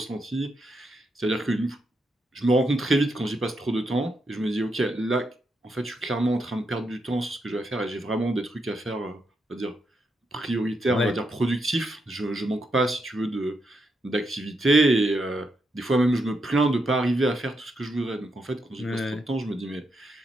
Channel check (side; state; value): both; normal; correlation 0.81